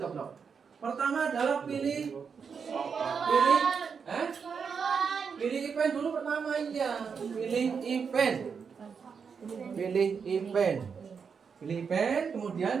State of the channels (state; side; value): quieter; left; 6.1 dB